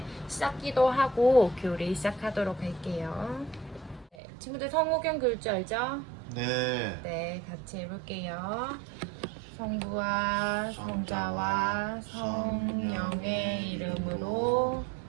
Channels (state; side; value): drops out; left; at 4.2 s